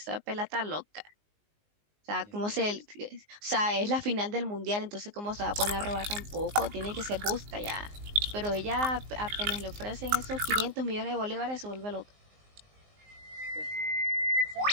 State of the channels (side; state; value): left; late; 19 ms